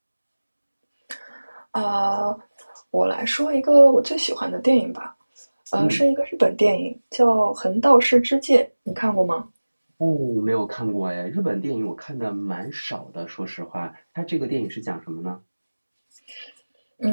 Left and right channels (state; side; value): inverted; both; correlation -1.00